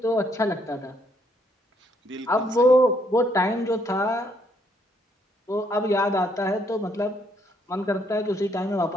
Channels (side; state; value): both; normal; correlation 0.70